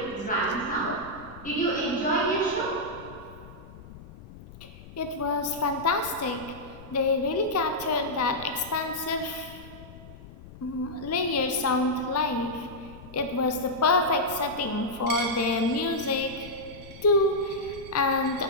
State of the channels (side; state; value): left; noise; rumble, 17 dB below the sound